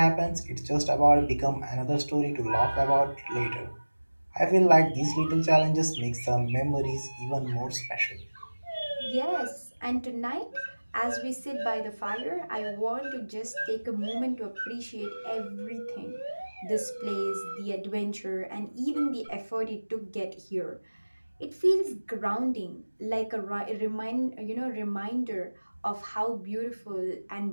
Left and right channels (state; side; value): inverted; both; correlation -1.00